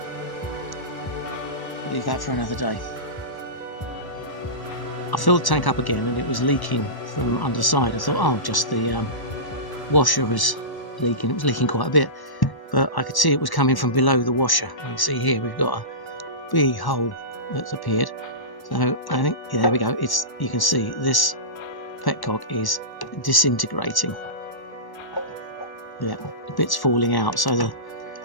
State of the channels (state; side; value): late; right; 1.1 ms